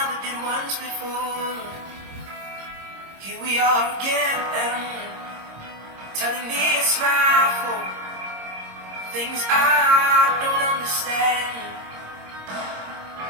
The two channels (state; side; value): late; left; 26 ms